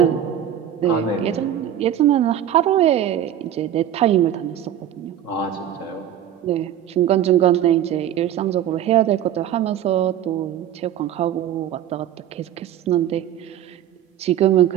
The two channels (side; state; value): left; quieter; 10.8 dB